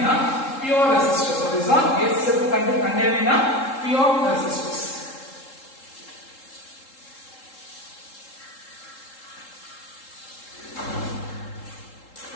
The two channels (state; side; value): late; right; 3.7 ms